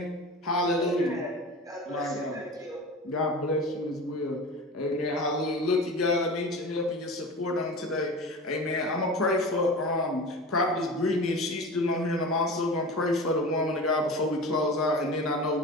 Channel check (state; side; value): normal; both; correlation 0.33